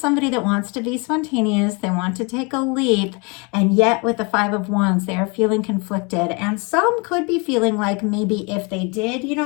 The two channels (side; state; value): right; quieter; 30.7 dB